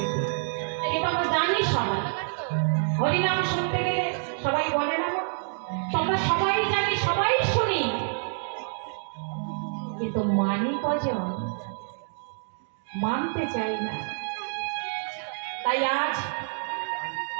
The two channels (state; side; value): silent; left; digital silence